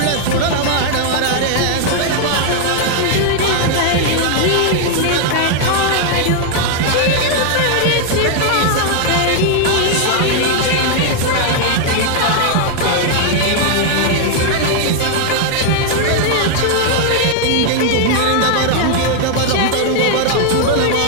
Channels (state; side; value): different; both; correlation 0.00